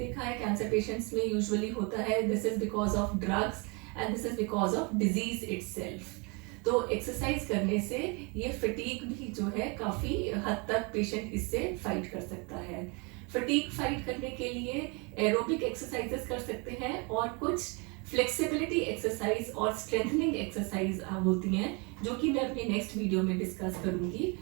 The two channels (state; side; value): quieter; left; 31.2 dB